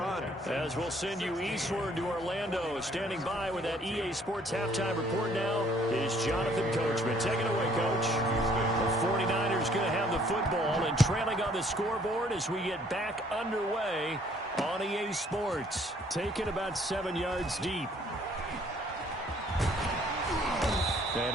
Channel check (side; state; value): both; normal; correlation 0.61